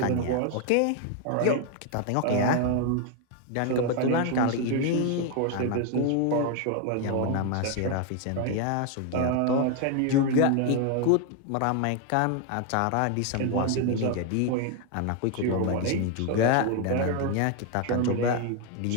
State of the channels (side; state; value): both; different; correlation 0.01